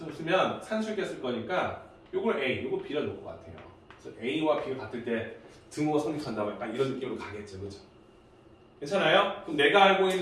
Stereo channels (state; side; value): identical; both; correlation 1.00